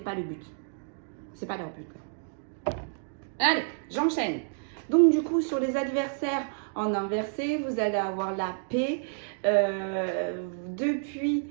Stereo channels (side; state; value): left; silent; digital silence